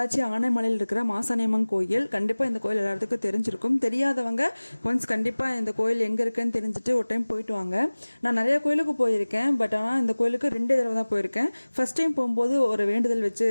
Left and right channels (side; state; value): both; inverted; correlation -1.00